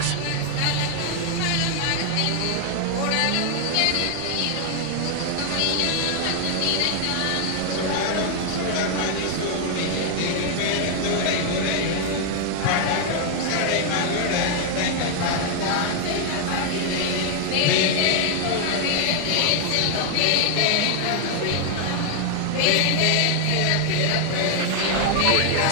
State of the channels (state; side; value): different; both; correlation 0.00